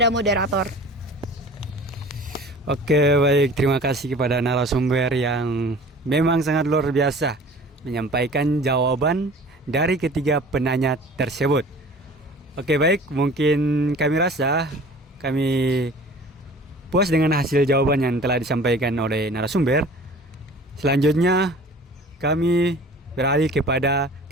moderator. Oke, baik. Terima kasih kepada narasumber yang memang sangat luar biasa menyampaikan jawaban dari ketiga penanya tersebut. Oke, baik. Mungkin kami rasa kami puas dengan hasil jawaban yang telah disampaikan oleh narasumber. Selanjutnya kami beralih kepada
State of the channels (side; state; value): both; normal; correlation 0.45